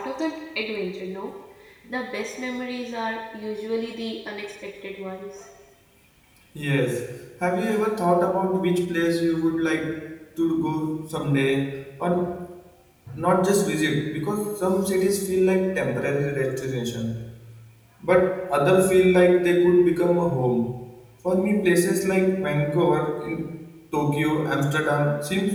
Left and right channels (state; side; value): identical; both; correlation 1.00